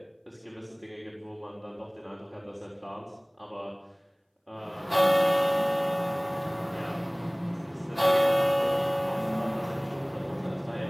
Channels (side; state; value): both; identical; correlation 1.00